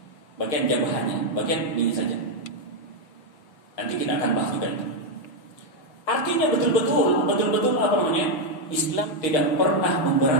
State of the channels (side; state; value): right; late; 6.5 ms